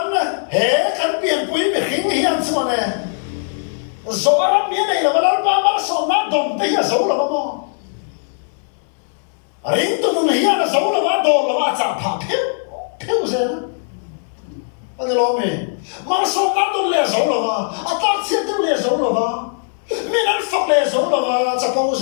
hệ căn biển quý bị khinh hiền sao này rồi lắm miếng này là mà ba số na đồng tới là số là mà riêng tụi nó hiền là số là mà đồng là mà chạm phá phiêu gì anh lo mình mà số na đồng là số là mà tác chiến đồng là số là mà mình ăn phật là số là mà chả bao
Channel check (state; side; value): silent; right; digital silence